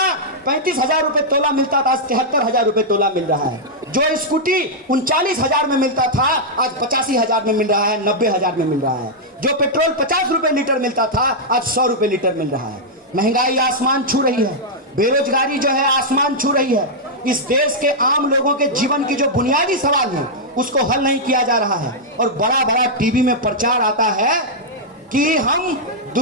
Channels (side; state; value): both; normal; correlation -0.06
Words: 35,000 रुपए तोला मिलता था आज 73,000 रुपए तोला मिल रहा है। जो स्कूटी 39,000 में मिलता था आज 85,000 में मिल रहा है, 90,000 में मिल रहा है। जो पेट्रोल 50 रुपए लीटर मिलता था आज 100 रुपए लीटर मिल रहा है। महंगाई आसमान छू रही है, बेरोजगारी जो है आसमान छू रही है। इस देश के आम लोगों के जीवन की जो बुनियादी सवाल है उसको हल नहीं किया जा रहा है और बड़ा बड़ा टीवी में प्रचार आता है कि हम